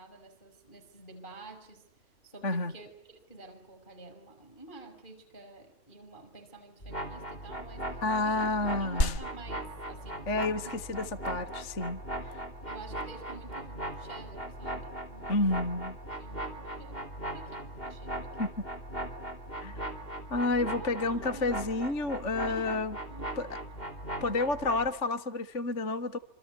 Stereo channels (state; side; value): late; right; 3.4 ms